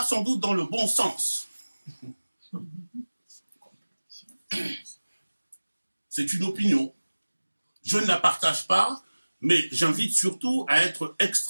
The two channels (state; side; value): inverted; both; correlation -1.00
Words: sans doute dans le bon sens. C'est une opinion. Je ne la partage pas, mais j'invite surtout à être